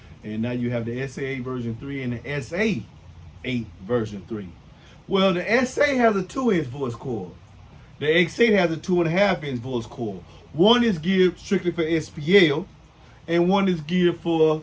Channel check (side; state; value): both; identical; correlation 1.00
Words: And now you have the SA8 version 3 and the SA8 version 3. Well, the SA has a 2-inch voice coil. The X8 has a 2.5-inch voice coil. One is geared strictly for SPL, and one is geared for